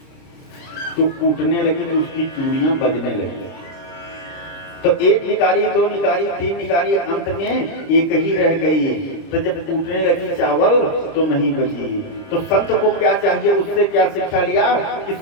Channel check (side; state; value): right; late; 30 ms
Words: तो कूटने लगी तो उसकी चूड़ियां बजने लगी। तो एक निकारी, दो निकारी, तीन निकारी, अंत में एक ही रह गई। तो जब टूटने लगी चावल तो नहीं बची। तो संत को क्या चाहिए, उससे क्या शिक्षा लिया कि